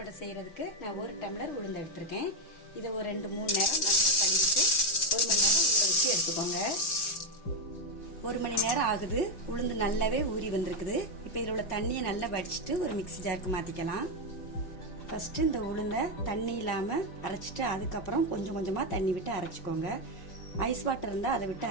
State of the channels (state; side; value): late; right; 5.4 ms